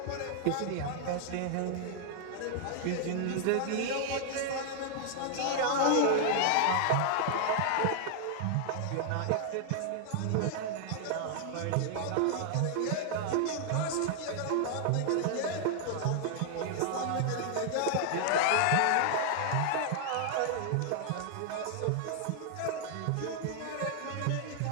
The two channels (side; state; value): both; different; correlation 0.00